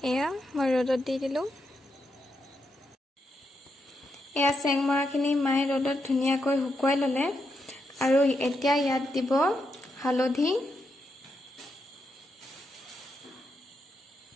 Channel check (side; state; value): both; normal; correlation 0.83